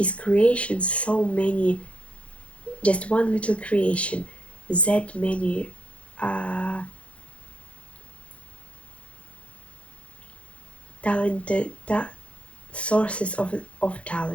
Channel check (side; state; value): right; late; 0.062 ms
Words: creations so many, just one little creation, that many talented sources of